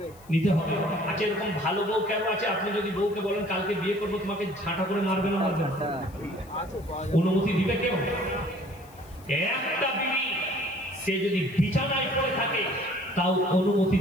নিতে হবে। আচ্ছা, এরকম ভালো বউ কেন আছে? আপনি যদি বউকে বলেন কালকে বিয়ে করবো, তোমাকে ঝাঁটা করে মারবে না মারবে না? অনুমতি দিবে কেউ? একটা বিবি সে যদি বিছানায় পড়ে থাকে তাও অনুমতি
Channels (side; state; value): left; noise; hiss, 25 dB below the sound